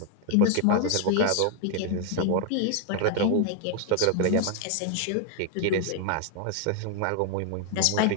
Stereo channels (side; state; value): both; different; correlation 0.00